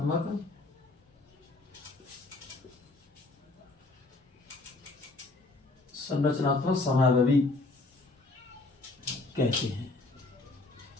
समावेशी कहते हैं।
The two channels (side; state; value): right; quieter; 3.2 dB